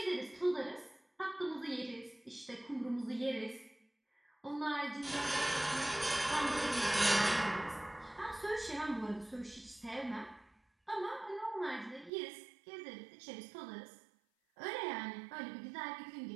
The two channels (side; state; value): left; drops out; at 12.1 s